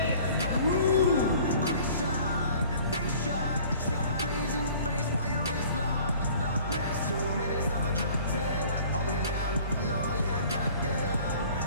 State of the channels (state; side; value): inverted; both; correlation -0.50